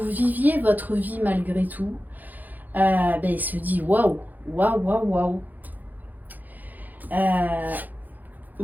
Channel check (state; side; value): late; left; 0.084 ms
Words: viviez votre vie malgré tout, il se dit waouh, waouh, waouh, waouh.